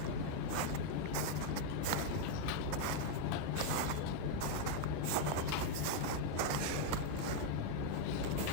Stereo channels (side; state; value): both; different; correlation 0.01